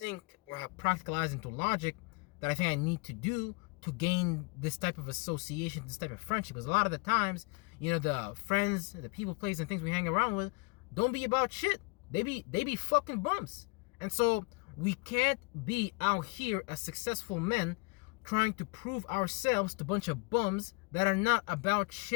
or have practicalized into logic that I think I need to do to gain this type of association, this type of friendship. Because a lot of the times, the friends, the people, places, and things we hang around with don't be about shit. They be fucking bums. And so we can't be out here as successful men trying to prove ourselves to a bunch of bums that are not about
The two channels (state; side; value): quieter; right; 30.1 dB